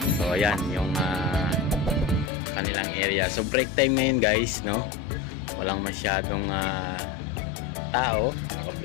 So ayan yung kanilang area. So break time ngayon guys, no? Walang masyadong tao.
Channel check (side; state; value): right; drops out; at 2.3 s